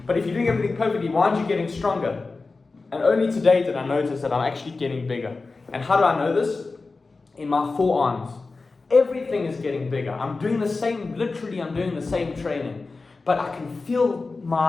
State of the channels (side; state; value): right; quieter; 3.8 dB